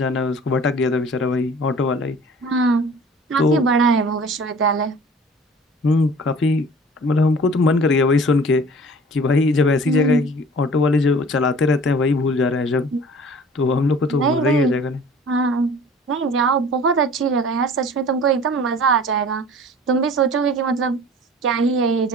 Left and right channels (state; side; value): normal; both; correlation 0.46